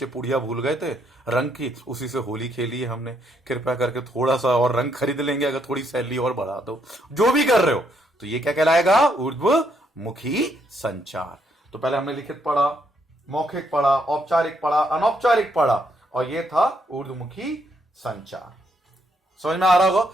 पुड़िया भूल गए थे रंग की, उसी से होली खेली है हमने, कृपया करके थोड़ा सा और रंग खरीद लेंगे अगर थोड़ी सैलरी और बढ़ा दो, जो भी कर रहे हो, तो ये क्या कहलाएगा? ऊर्ध्वमुखी संचार। तो पहले हमने लिखित पढ़ा, मौखिक पढ़ा, औपचारिक पढ़ा, अनौपचारिक पढ़ा, और ये था ऊर्ध्वमुखी संचार। समझ में आ रहा होगा?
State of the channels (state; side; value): normal; both; correlation 0.74